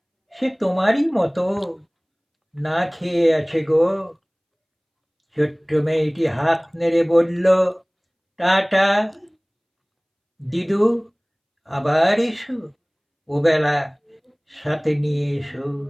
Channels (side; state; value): both; identical; correlation 1.00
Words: সে তোমারই মতো না খেয়ে আছে গো। ছোট্ট মেয়েটি হাত নেড়ে বলল, টাটা দিদু, আবার এসো, ওবেলা সাথে নিয়ে এসো